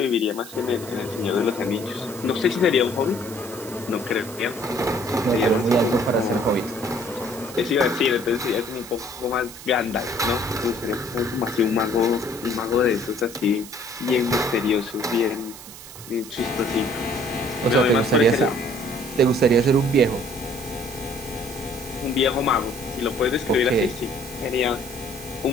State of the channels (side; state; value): right; noise; hiss, 15 dB below the sound